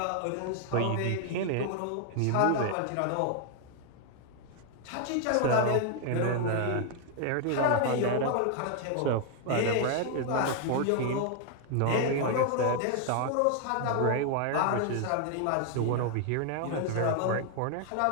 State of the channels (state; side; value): different; both; correlation 0.00